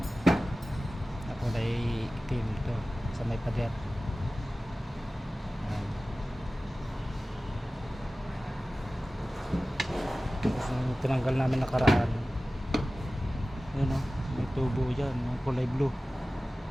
Ako ay itim ito sa may pader. Yan. Yung tinanggal namin nakaraan, yun o, may tubo dyan, may kulay blue.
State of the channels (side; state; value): both; normal; correlation 0.96